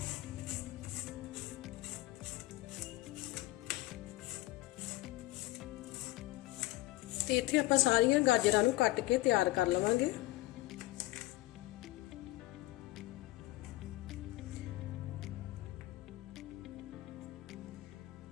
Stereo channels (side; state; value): right; quieter; 18.5 dB